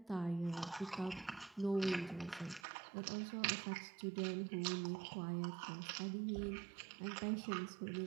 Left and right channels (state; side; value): drops out; left; at 2.7 s